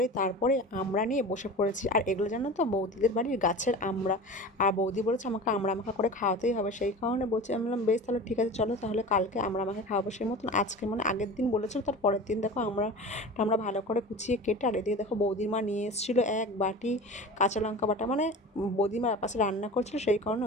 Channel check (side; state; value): both; normal; correlation 0.34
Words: তারপরে আমরা নিয়ে বসে পড়েছি। আর এগুলো জানো তো বৌদিদের বাড়ির গাছের আমড়া। আর বৌদি বলেছে আমাকে আমড়া মাখা করে খাওয়াতেই হবে, সেই কারণে বলছি। আমি বললাম বেশ তাহলে ঠিক আছে, চলো তাহলে কালকে আমড়া মাখা খাওয়াবো। সেই মতন আজকে মানে আগের দিন বলেছিল, তার পরের দিন দেখো আমরা ভালো করে কুচিয়ে কেটে, আর এদিকে দেখো বৌদির মা নিয়ে এসেছিলো এক বাটি কাঁচা লঙ্কা বাটা। মানে বৌদিমা পাশে রান্না করছিল, সেই কারণে